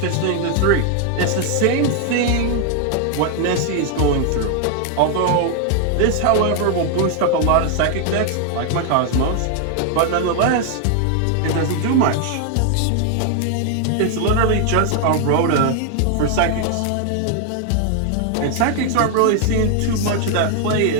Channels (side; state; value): both; different; correlation 0.00